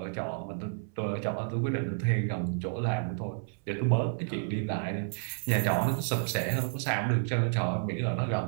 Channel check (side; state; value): left; silent; 57 dB below the other